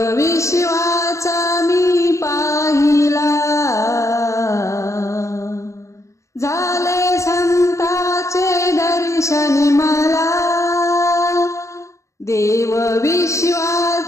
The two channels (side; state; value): right; late; 0.15 ms